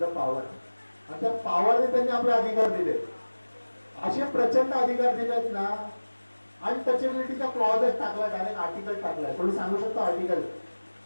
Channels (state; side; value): inverted; both; correlation -1.00